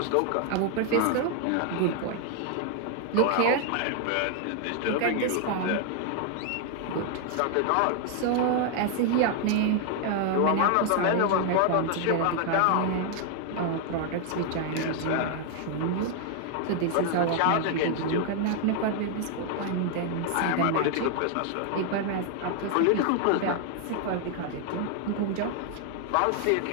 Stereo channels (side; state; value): both; different; correlation 0.00